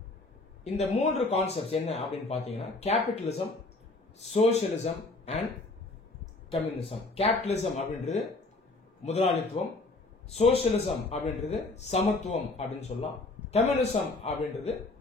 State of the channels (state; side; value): quieter; right; 3.2 dB